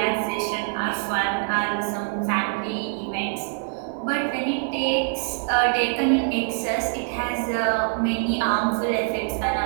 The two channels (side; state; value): left; silent; 62 dB below the other